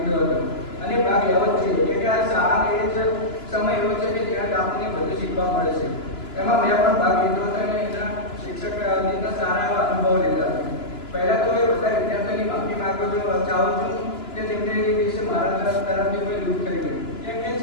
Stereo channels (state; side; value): late; right; 2.9 ms